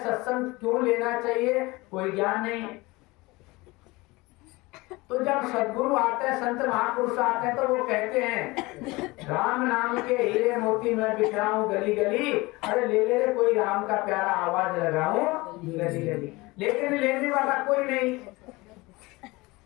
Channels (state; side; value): quieter; right; 22.5 dB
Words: सत्संग क्यों लेना चाहिए, कोई ज्ञान नहीं है। तो जब सद्गुरु आते हैं, संत महापुरुष आते हैं, तो वो कहते हैं राम नाम के हीरे मोती मैं बिखराऊं गली गली, अरे ले ले कोई राम का प्यारा आवाज लगाऊं गली गली, लेकिन लेने वाला कोई नहीं।